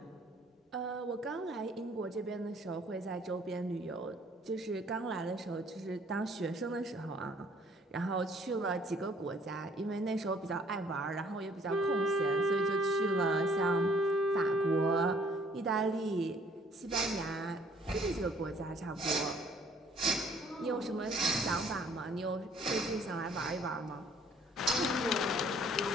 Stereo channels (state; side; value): normal; both; correlation 0.59